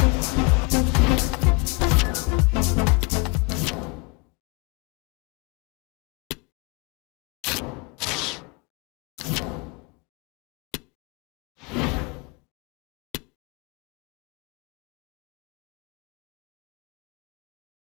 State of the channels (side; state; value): right; quieter; 27.7 dB